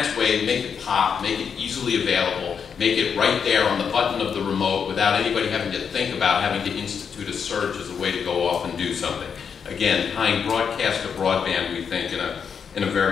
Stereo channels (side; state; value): right; quieter; 6.8 dB